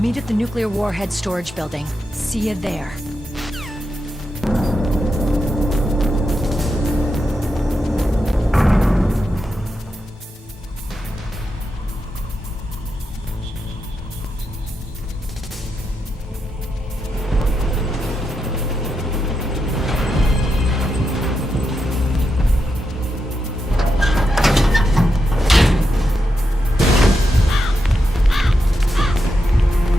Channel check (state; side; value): normal; both; correlation 0.86